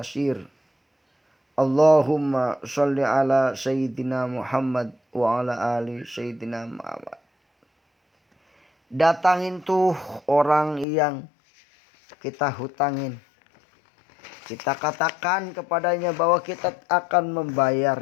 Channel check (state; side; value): drops out; right; at 10.9 s